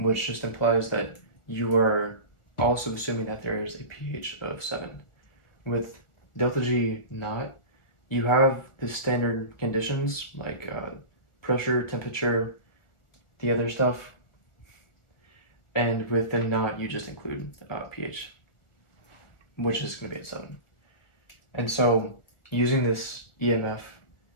just implies that you are also assuming that there is a pH of 7. With delta G naught, you have the standard conditions like pressure, temperature, the other stuff, and with the naught, you just include pH, which is going to be at 7. And so using this EMF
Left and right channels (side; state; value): right; late; 1.4 ms